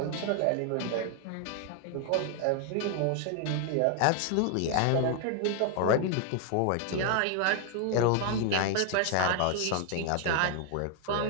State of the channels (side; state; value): both; different; correlation 0.00